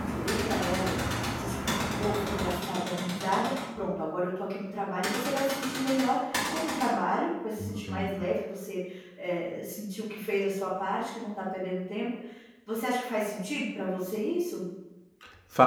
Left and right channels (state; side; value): identical; both; correlation 1.00